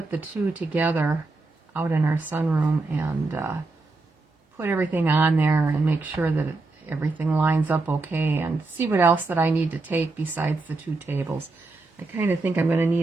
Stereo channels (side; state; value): left; quieter; 3.5 dB